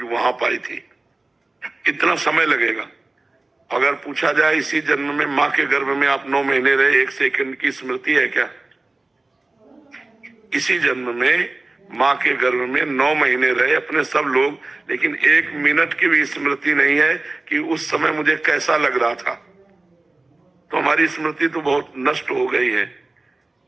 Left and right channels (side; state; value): left; quieter; 3.1 dB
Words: वहां पाई थी। इतना समय लगेगा। अगर पूछा जाए इसी जन्म में माँ के गर्भ में आप 9 महीने रहे, 1 सेकंड की स्मृति है क्या? इसी जन्म में माँ के गर्भ में 9 महीने रहे अपने सब लोग, लेकिन 1 मिनट की भी स्मृति नहीं है कि उस समय मुझे कैसा लग रहा था। तो हमारी स्मृति तो बहुत नष्ट हो गई है,